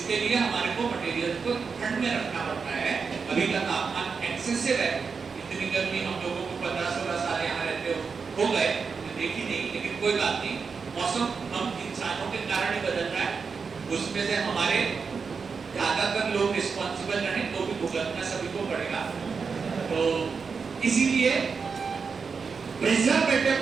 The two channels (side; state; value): left; quieter; 5.4 dB